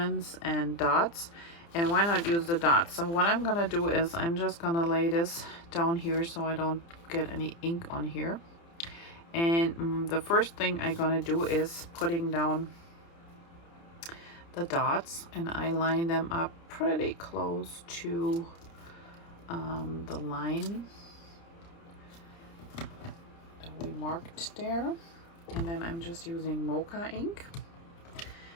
and dots, and why not use the dots? So what I'm gonna do is I'm just gonna lay this down here so I don't get any ink on here. And the first thing I'm gonna do is putting down the dots, and I line them up pretty close to the line that we marked there. And then I'm just using Mocha ink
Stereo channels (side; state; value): right; late; 30 ms